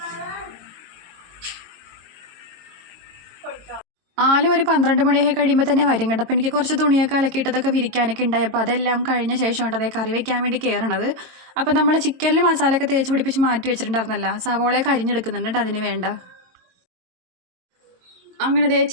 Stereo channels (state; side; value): late; left; 22 ms